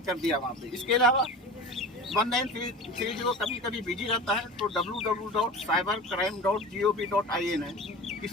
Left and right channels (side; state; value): both; normal; correlation 0.34